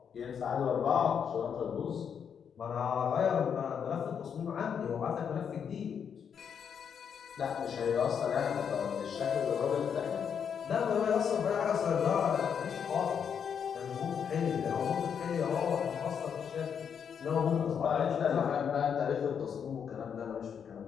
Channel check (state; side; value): quieter; right; 7.4 dB